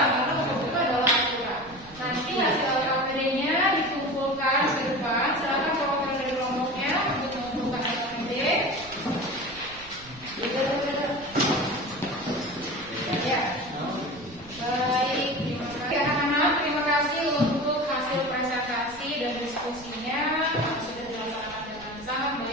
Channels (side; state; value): right; noise; rumble, 21 dB below the sound